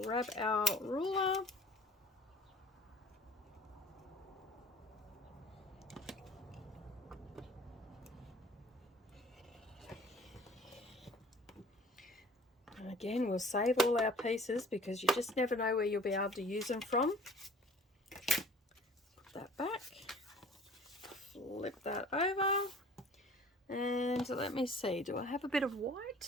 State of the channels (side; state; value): both; normal; correlation 0.49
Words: our ruler, and again we'll save all our pieces because you just never know where you'll be able to use them from. Put that back, flip that over, and let me see, do I have a bit of